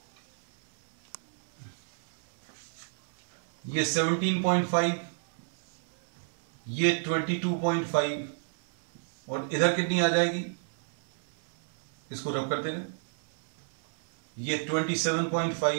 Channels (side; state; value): left; silent; 58 dB below the other